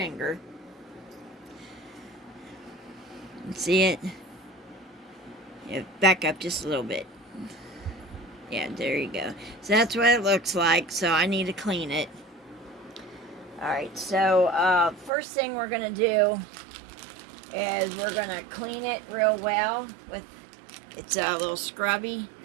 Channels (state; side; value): drops out; left; at 15.1 s